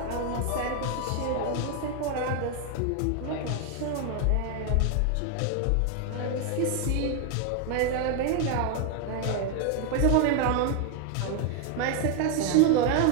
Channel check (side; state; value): both; different; correlation 0.01